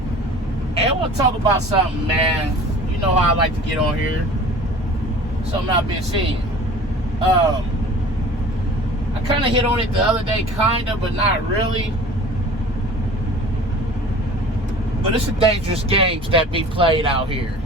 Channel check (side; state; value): both; normal; correlation 0.43